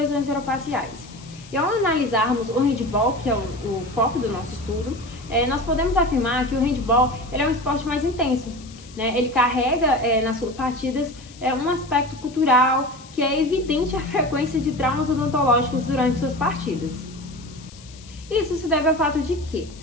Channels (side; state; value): left; noise; hiss, 21 dB below the sound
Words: orofaciais. E ao analisarmos o handball, que é o foco do nosso estudo, nós podemos afirmar que o handball ele é um esporte mais intenso. Ele carrega nas suas partidas um aspecto cultural que é evidente a frequência de traumas odontológicos durante suas partidas. Isso se deve ao fato de que